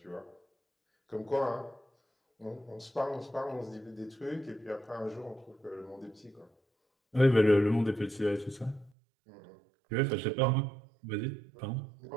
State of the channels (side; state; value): left; drops out; at 8.9 s